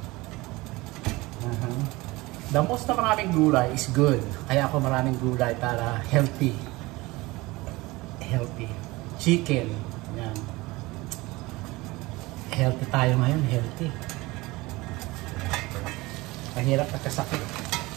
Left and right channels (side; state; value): left; quieter; 21.5 dB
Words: The most na maraming gulay is good. Kaya ako maraming gulay para healthy. Healthy. Chicken. Yan. Healthy tayo ngayon. Healthy. Mahirap pagkasakit.